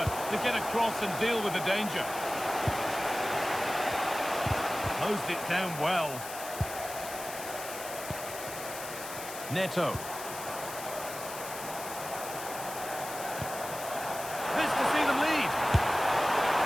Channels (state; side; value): noise; left; hiss, 10 dB below the sound